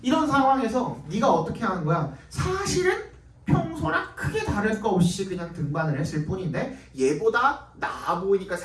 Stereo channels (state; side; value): identical; both; correlation 1.00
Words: 이런 상황에서 네가 어떻게 하는 거야? 사실은 평소랑 크게 다를 거 없이 그냥 등반을 했을 뿐인데 얘보다 나아 보이니까